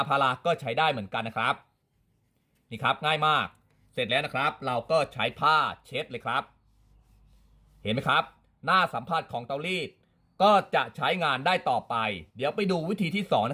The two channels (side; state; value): both; identical; correlation 1.00